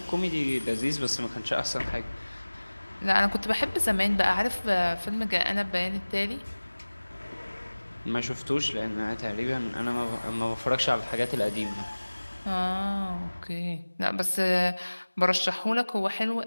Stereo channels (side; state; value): both; inverted; correlation -1.00